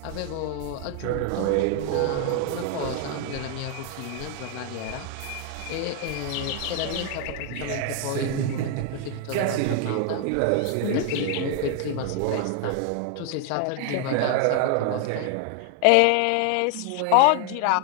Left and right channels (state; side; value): different; both; correlation 0.00